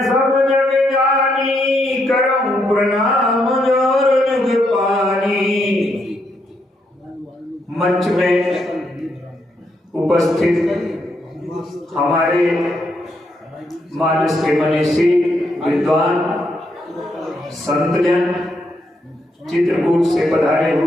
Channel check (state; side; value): normal; both; correlation 0.78